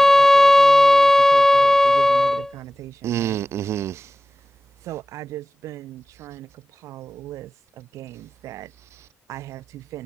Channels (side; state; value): both; normal; correlation 0.97